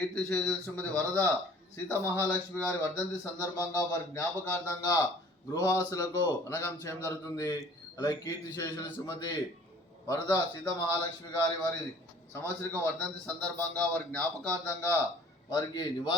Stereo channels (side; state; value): both; normal; correlation 0.52